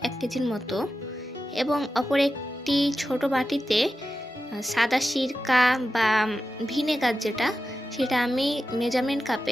1 কেজির মতো, এবং অপর একটি ছোট বাটিতে সাদা সিরকা বা ভিনেগার যেটা, সেটা আমি মেজারমেন্ট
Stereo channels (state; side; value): normal; both; correlation 0.91